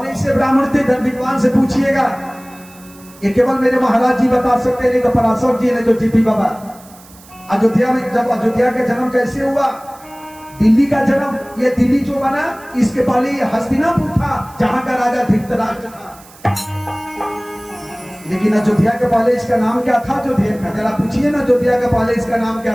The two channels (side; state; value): right; noise; hiss, 24 dB below the sound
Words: ऐसे ब्राह्मण थे? धन विद्वान से पूछिएगा। ये केवल मेरे महाराज जी बता सकते, नहीं तो पराशर जी, नहीं तो जीपी बाबा। अयोध्या में जब अयोध्या का जन्म कैसे हुआ? दिल्ली का जन्म, ये दिल्ली जो बना इसके पहले ये हस्तिनापुर था जहां का राजा धृतराष्ट्र था। लेकिन अयोध्या के पहले इसका नाम क्या था? अयोध्या का जरा पूछिए ना, अयोध्या के पहले इसका नाम